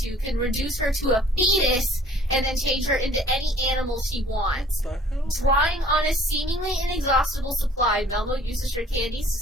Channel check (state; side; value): normal; both; correlation 0.54